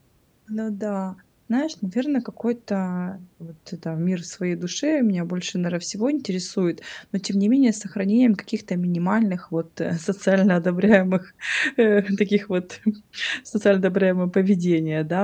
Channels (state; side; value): identical; both; correlation 1.00